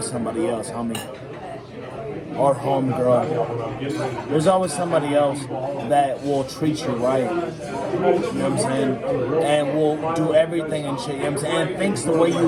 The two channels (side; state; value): both; identical; correlation 1.00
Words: somebody else, homie. Or homegirl. There's always somebody else that will treat you right. You know what I'm saying? And will do everything and shit, you know what I'm saying? And thinks the way